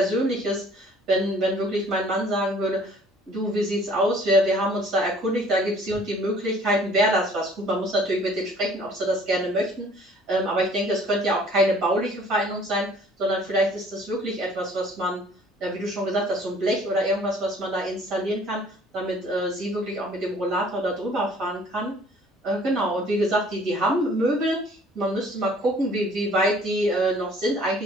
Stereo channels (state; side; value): normal; both; correlation 0.54